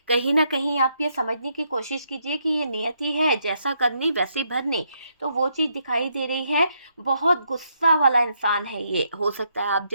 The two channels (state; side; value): inverted; both; correlation -0.76